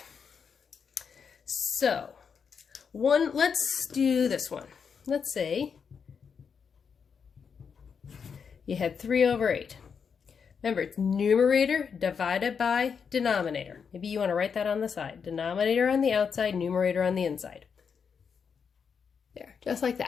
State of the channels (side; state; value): right; quieter; 6.4 dB